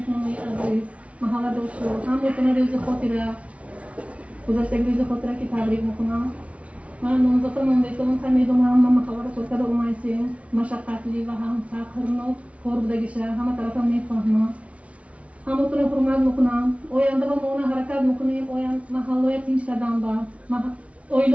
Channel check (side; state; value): left; late; 0.064 ms